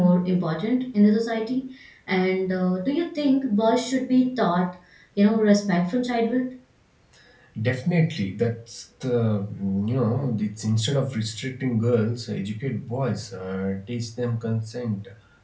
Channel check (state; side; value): identical; both; correlation 1.00